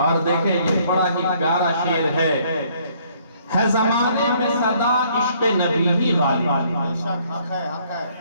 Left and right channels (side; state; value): both; inverted; correlation -0.64